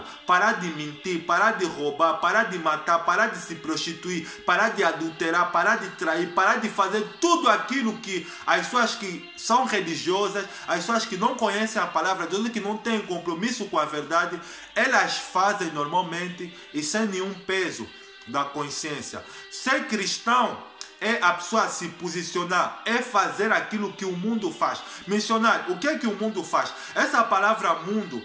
parar de mentir, parar de roubar, parar de matar, parar de se prostituir, parar de adulterar, parar de trair, parar de fazer tudo aquilo que as pessoas que são religiosas, as pessoas que não conhecem a palavra de Deus, que não têm compromisso com a verdade, elas fazem normalmente e sem nenhum peso da consciência. Ser cristão é a pessoa se posicionar, é fazer aquilo que o mundo faz. Missionário, o que é que o mundo faz? Essa palavra mundo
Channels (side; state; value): both; identical; correlation 1.00